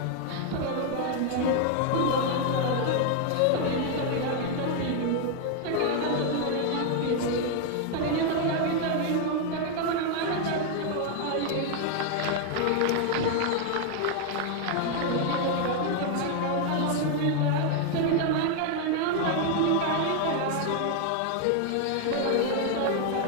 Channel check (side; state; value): both; different; correlation 0.00